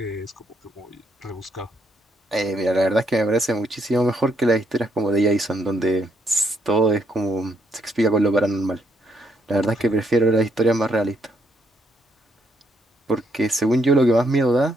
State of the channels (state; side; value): normal; both; correlation 0.75